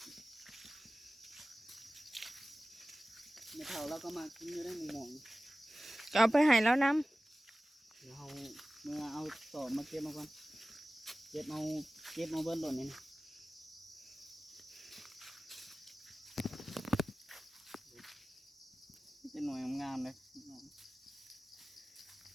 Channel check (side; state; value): both; normal; correlation 0.97